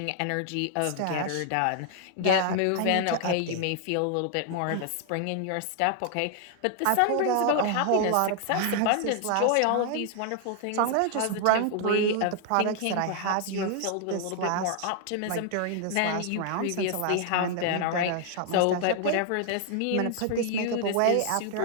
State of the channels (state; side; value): different; both; correlation 0.00